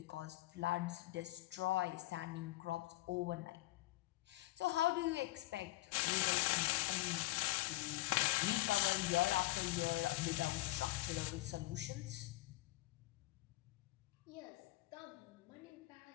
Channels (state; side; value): quieter; right; 19.0 dB